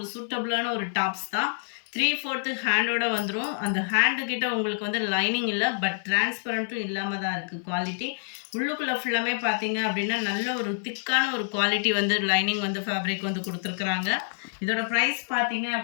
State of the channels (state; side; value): silent; right; 56 dB below the other